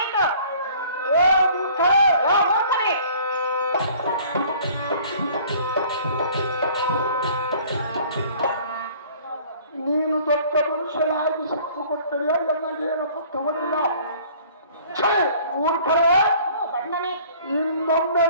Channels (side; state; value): both; inverted; correlation -0.52